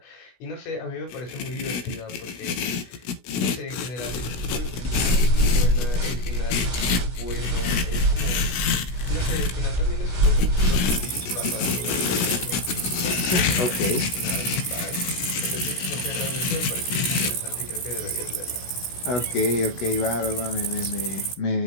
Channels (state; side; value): late; right; 16 ms